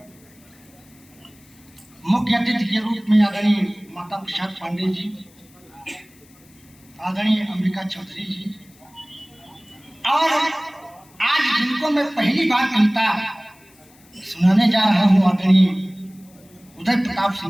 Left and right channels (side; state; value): left; noise; hiss, 28 dB below the sound